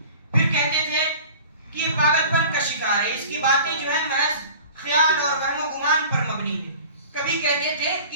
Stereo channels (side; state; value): both; inverted; correlation -0.42